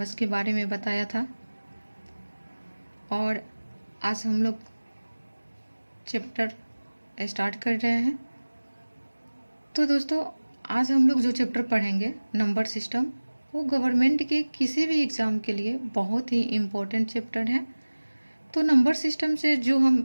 के बारे में बताया था और आज हम लोग चैप्टर स्टार्ट कर रहे हैं। तो दोस्तों आज हम लोग जो चैप्टर पढ़ेंगे नंबर सिस्टम, वो गवर्नमेंट के किसी भी एग्ज़ाम के लिए बहुत ही इम्पोर्टेंट चैप्टर है। तो नंबर सिस्टम से जो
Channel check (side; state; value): both; inverted; correlation -1.00